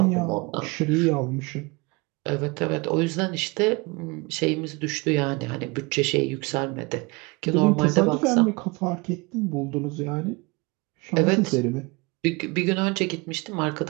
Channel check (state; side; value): quieter; left; 26.5 dB